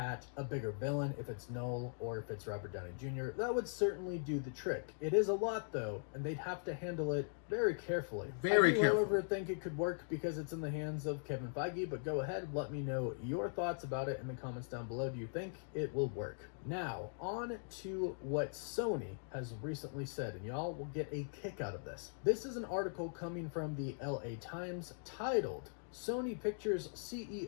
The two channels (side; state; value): right; silent; digital silence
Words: a bigger villain if it's Noel or if it's Robert Downey Jr. That would certainly do the trick. It is a lot though, and they'd have to handle it very carefully. I do, however, think it could work because it's in the hands of Kevin Feige, but go ahead, let me know your thoughts about it in the comments down below. Do you think it will work? Now, on to what Sony has recently said, and y'all will get a kick out of this. This is an article coming from the LA Times titled, Sony Pictures